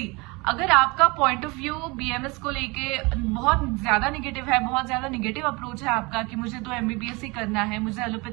अगर आपका पॉइंट ऑफ व्यू बीएमएस को लेके बहुत ज्यादा निगेटिव है, बहुत ज्यादा निगेटिव अप्रोच है आपका कि मुझे तो एमबीबीएस ही करना है, मुझे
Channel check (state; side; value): quieter; left; 26.2 dB